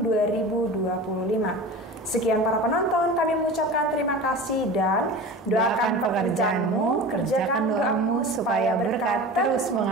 2025. Sekian para penonton, kami mengucapkan terima kasih dan doakan pekerjaanmu, kerjakan doamu supaya berkat terus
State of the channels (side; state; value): both; normal; correlation 0.34